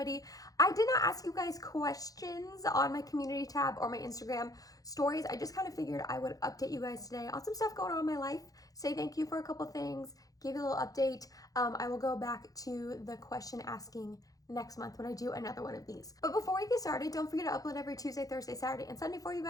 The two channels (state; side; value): late; right; 0.17 ms